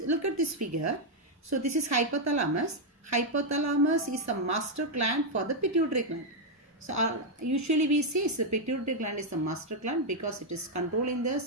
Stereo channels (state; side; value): normal; both; correlation 0.00